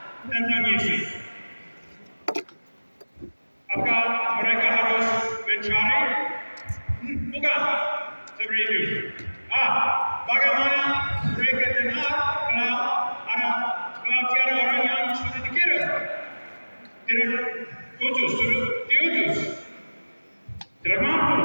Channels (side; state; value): both; inverted; correlation -1.00